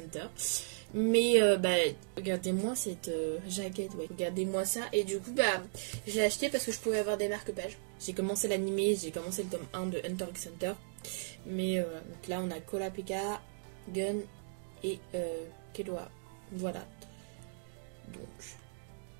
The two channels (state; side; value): silent; left; digital silence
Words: Mais bah, regardez-moi cette jaquette, ouais. Regardez-moi ça. Et du coup, bah, je l'ai acheté parce que je pouvais avoir des marque-pages. J'ai commencé l'animé, j'ai commencé le tome 1 de Hunter x Hunter. Mais donc là, on a Kurapika, Gun et Killua. Voilà. Donc,